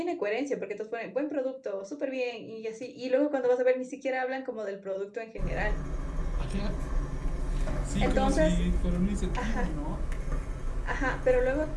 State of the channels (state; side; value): identical; both; correlation 1.00